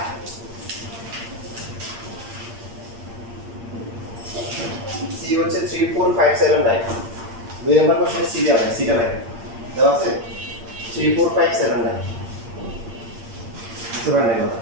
সি হচ্ছে 3 4 5 7 9 2 নাম্বার কোশ্চেনে সি দেওয়া আছে সিটা লাগে দেওয়া আছে 3 4 5 7 9 বুঝতে পারলেন কথা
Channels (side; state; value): left; late; 8.7 ms